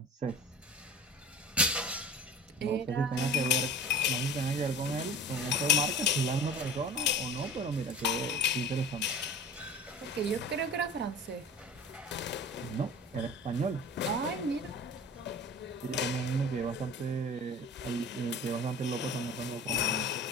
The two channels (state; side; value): normal; both; correlation 0.39